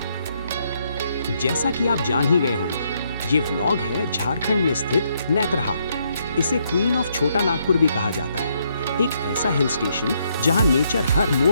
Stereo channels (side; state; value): both; inverted; correlation -0.74